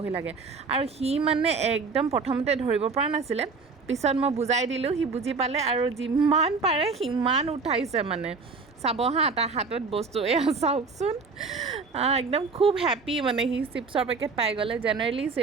লাগে আৰু সি মানে একদম প্ৰথমতে ধৰিব পৰা নাছিলে পিছত মই বুজাই দিলোঁ সি বুজি পালে আৰু যিমান পাৰে সিমান উঠাইছে মানে চাব হা তাৰ হাতত বস্তু এয়া চাওকচোন একদম খুব হেপ্পী মানে সি চিপছৰ পেকেট পাই গ'লে জেনেৰেলি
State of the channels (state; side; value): quieter; left; 4.6 dB